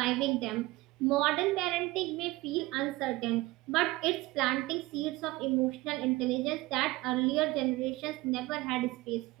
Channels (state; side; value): quieter; left; 20.3 dB